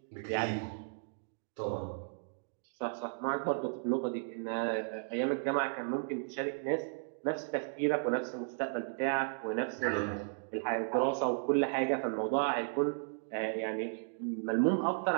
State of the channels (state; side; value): silent; left; digital silence